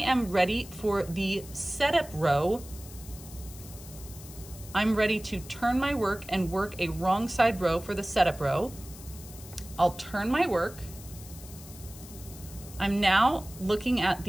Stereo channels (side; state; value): left; noise; hiss, 17 dB below the sound